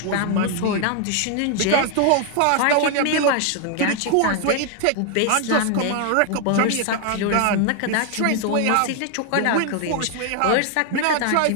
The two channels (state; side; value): different; both; correlation 0.00